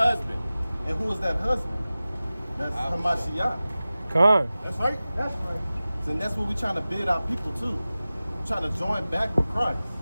And who is that husband? That's Hamashiach. Come on. That's right. That's right. And that's what we're trying to bid our people to. We're trying to join back with Christ.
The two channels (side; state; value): both; inverted; correlation -0.97